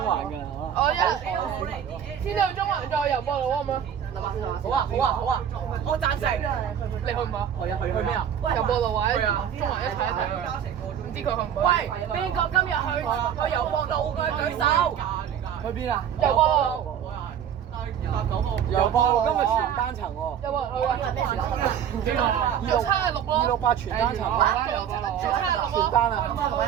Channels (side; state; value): left; quieter; 9.1 dB